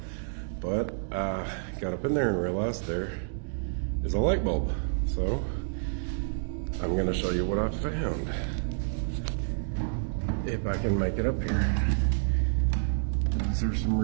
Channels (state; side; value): silent; left; digital silence